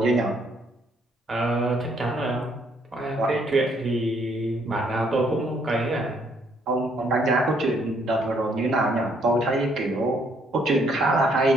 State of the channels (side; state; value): both; normal; correlation 0.68